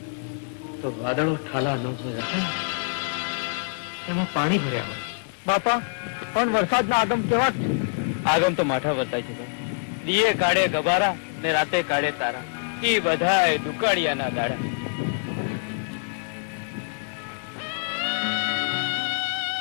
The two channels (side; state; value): right; silent; 61 dB below the other